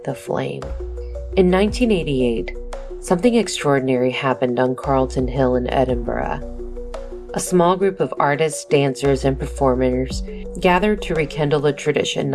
the flame. In 1988, something extraordinary happened on Carlton Hill in Edinburgh. A small group of artists, dancers, and performers gathered to rekindle a tradition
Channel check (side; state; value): both; identical; correlation 1.00